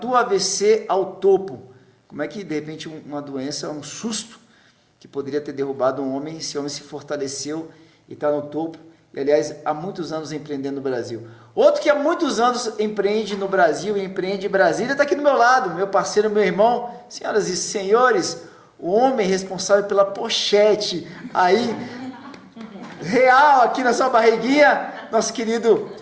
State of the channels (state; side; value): identical; both; correlation 1.00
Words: AVC ao topo. Como é que, de repente, uma doença, um susto, que poderia ter derrubado um homem, esse homem se fortaleceu e está no topo. E, aliás, há muitos anos empreendendo no Brasil. Outro que há muitos anos empreende no Brasil e empreende em Brasília está aqui do meu lado, meu parceiro, meu irmão. Senhoras e senhores, o homem responsável pela pochete aí, real aqui na sua barriguinha, nosso querido